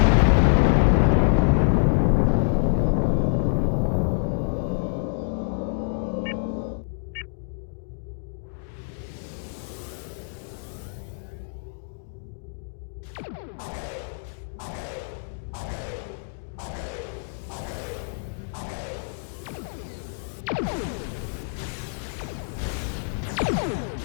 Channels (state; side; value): silent; right; digital silence